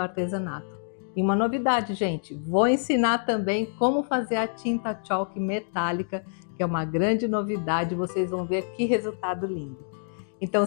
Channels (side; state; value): right; silent; digital silence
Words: E uma novidade, gente, vou ensinar também como fazer a tinta chalk metálica, que é uma grande novidade, vocês vão ver que resultado lindo.